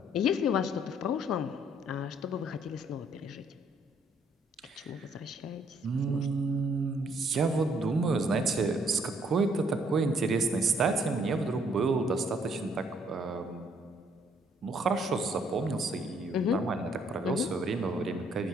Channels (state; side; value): normal; both; correlation 0.66